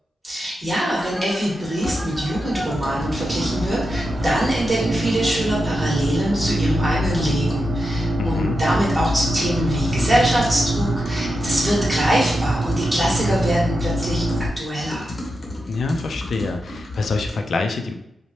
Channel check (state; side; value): normal; both; correlation 0.88